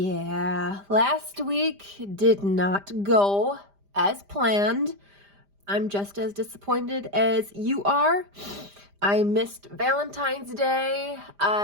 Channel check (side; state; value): left; late; 5.0 ms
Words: last week did not go as planned. I'm just as disappointed as you are. I missed Valentine's Day.